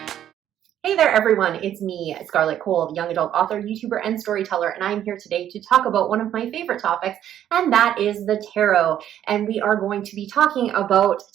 Hey there, everyone. It's me, Scarlett Kol, young adult author, YouTuber, and storyteller, and I'm here today to talk about one of my favorite topics, and that is the tarot. And we are going to be talking about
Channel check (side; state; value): left; quieter; 10.9 dB